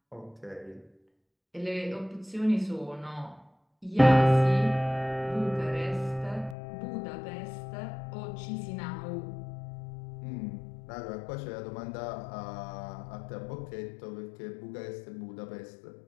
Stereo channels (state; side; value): drops out; right; at 6.6 s